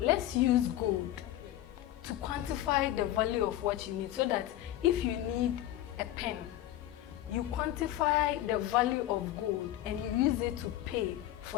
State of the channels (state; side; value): quieter; right; 13.7 dB